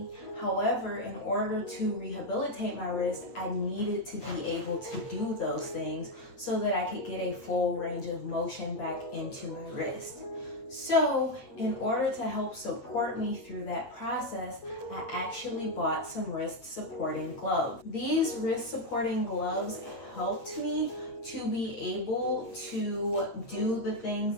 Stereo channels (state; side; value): late; right; 8.5 ms